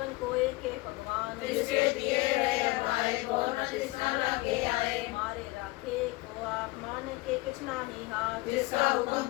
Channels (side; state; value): right; quieter; 22.0 dB